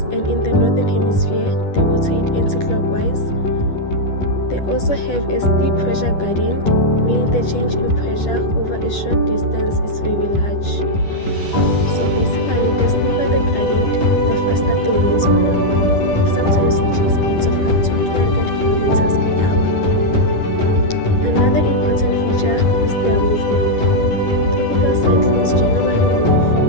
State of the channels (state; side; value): late; right; 10 ms